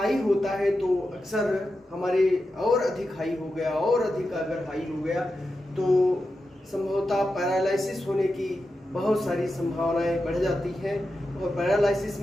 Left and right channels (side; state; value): both; normal; correlation 0.90